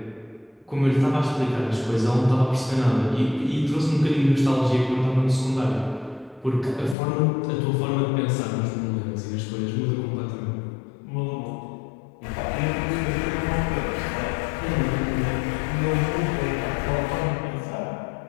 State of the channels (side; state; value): right; drops out; at 7.0 s